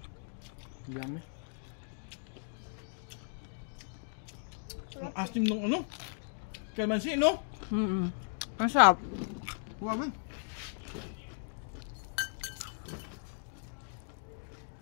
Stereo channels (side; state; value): right; silent; digital silence